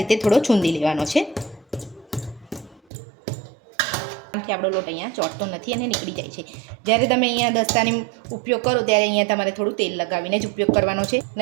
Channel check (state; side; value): drops out; left; at 2.8 s